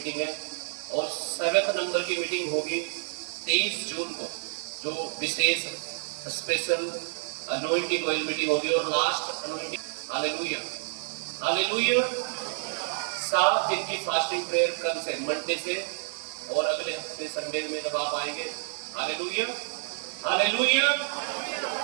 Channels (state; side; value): silent; left; digital silence